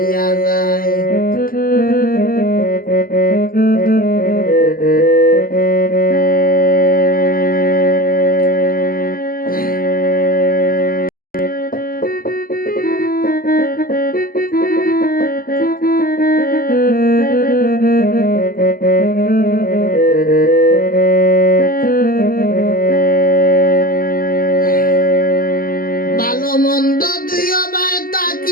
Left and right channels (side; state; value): right; late; 0.42 ms